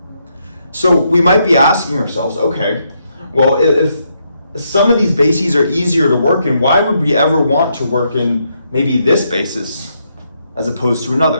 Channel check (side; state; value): both; inverted; correlation -0.78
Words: So we might be asking ourselves, okay, Well, if some of these bases are easier to work in, why would we ever want to work in maybe this basis as opposed to